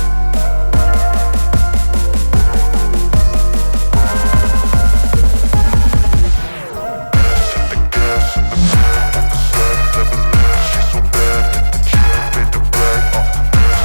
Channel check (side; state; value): both; inverted; correlation -1.00